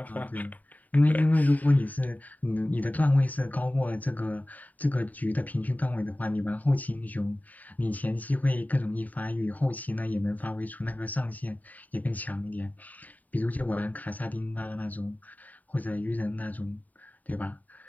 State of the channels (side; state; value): right; late; 0.077 ms